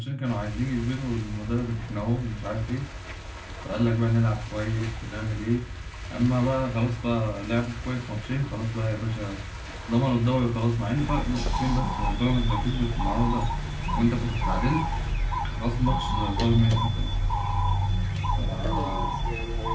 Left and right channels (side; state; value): both; identical; correlation 1.00